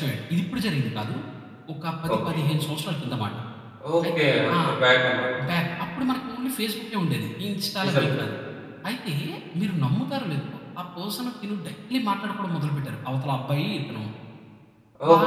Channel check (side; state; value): both; identical; correlation 1.00